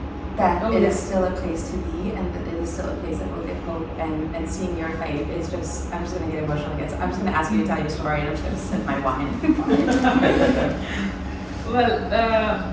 that it is still a place to be, and that it is still a place that will give hope. And seeing your fight is just, I'm just gonna get emotional again. So I'm just gonna ask you to tell your story, and I'm just gonna sip my wine. Well,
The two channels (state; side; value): identical; both; correlation 1.00